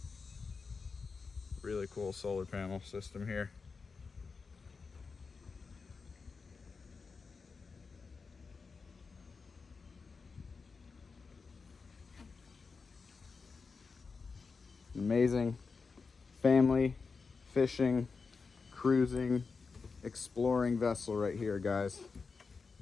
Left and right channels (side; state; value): right; quieter; 4.8 dB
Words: Really cool solar panel system here. Amazing family fishing, cruising, exploring vessel right here, guys.